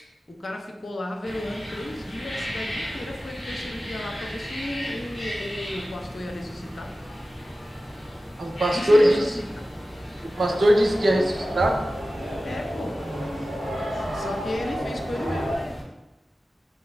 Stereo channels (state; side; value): normal; both; correlation 0.95